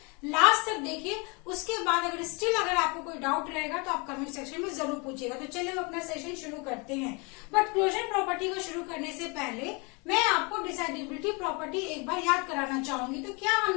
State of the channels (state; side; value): quieter; right; 30.5 dB